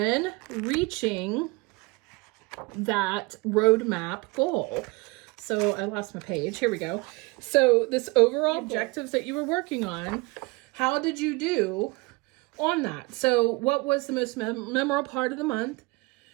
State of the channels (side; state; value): left; quieter; 25.4 dB